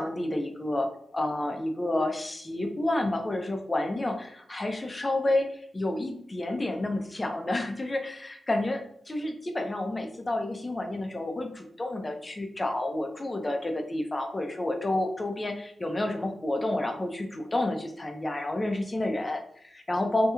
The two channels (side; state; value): both; normal; correlation 0.94